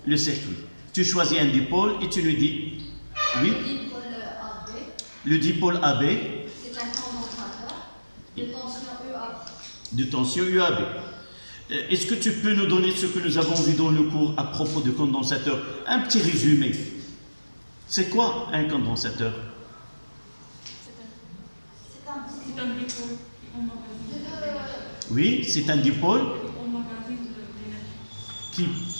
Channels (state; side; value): inverted; both; correlation -1.00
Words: le circuit. Tu choisis un dipôle et tu nous dis oui. Le dipôle AB, c'est un condensateur de tension UAB. De tension UAB. Est-ce que tu peux nous donner ce que nous avons vu dans le cours à propos de condensateur? Un petit résumé. C'est quoi un condensateur? C'est un dipôle. Oui, c'est un dipôle